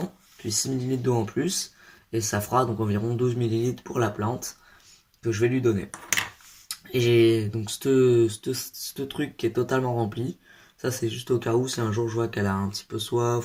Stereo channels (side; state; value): both; identical; correlation 1.00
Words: puis 6 millilitres d'eau en plus. Et ça fera donc environ 12 millilitres pour la plante que je vais lui donner. Et j'ai donc ce truc qui est totalement rempli. Ça, c'est juste au cas où, si un jour je vois qu'elle a un petit peu